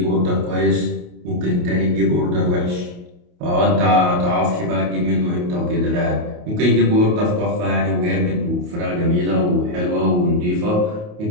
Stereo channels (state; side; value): late; left; 28 ms